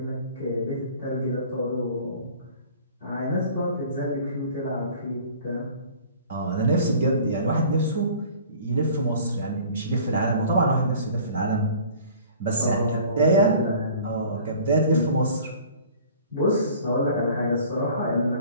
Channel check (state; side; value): inverted; both; correlation -0.47